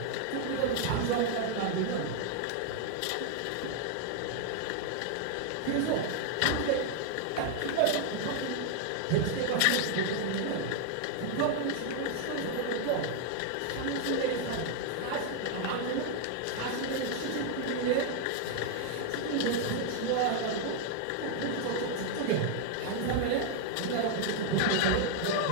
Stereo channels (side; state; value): both; different; correlation 0.00